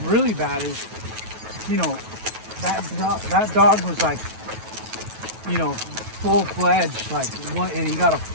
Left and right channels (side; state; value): left; late; 9.2 ms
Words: really bad is, you know, that dog was like you know, full-fledged, like one, and you got a